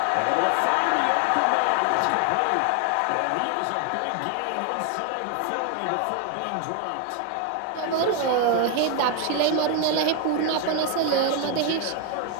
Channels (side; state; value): both; different; correlation 0.01